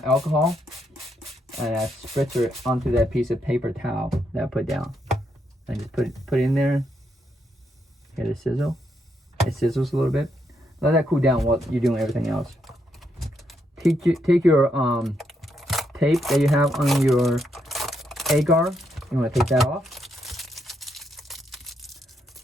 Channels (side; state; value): both; normal; correlation 0.78